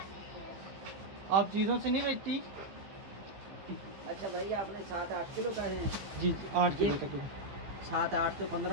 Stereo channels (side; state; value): left; late; 15 ms